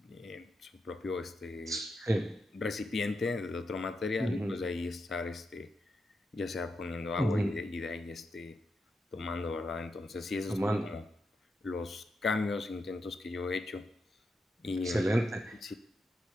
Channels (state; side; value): normal; both; correlation 0.85